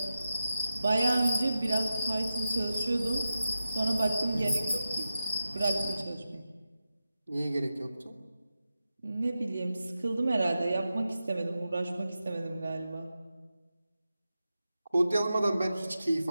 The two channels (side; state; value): both; inverted; correlation -0.91